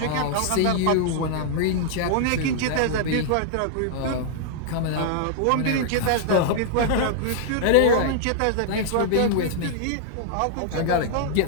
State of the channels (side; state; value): both; different; correlation -0.01